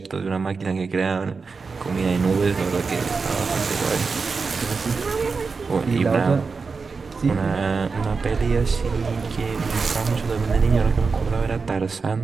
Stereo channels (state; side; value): quieter; left; 4.7 dB